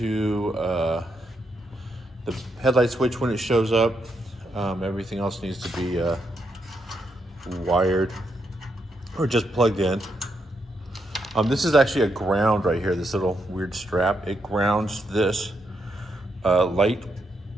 the headlight switch when it shows up. Everything else needs to be wired or just plugged in. This is actually a ground right here, this little weird strap. It grounds this light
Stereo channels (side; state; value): both; normal; correlation 0.80